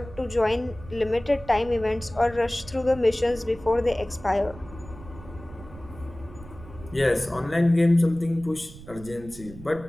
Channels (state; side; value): noise; right; rumble, 17 dB below the sound